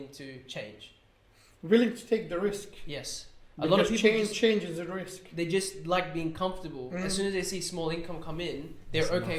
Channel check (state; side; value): identical; both; correlation 1.00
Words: to change. Willing to take the risk. Yes. Because a lot of people change is a risk. They just like being comfortable. As soon as they see small income come in, they're okay